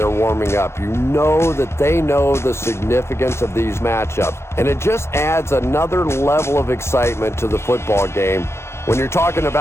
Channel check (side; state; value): right; late; 0.13 ms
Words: warming up. You know that they know the significance of these matchups, and it just adds another level of excitement to the football game. When you're talking